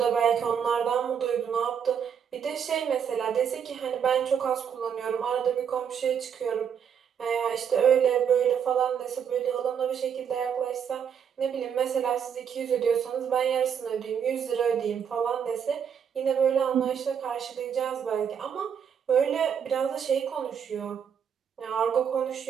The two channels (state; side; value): quieter; left; 7.7 dB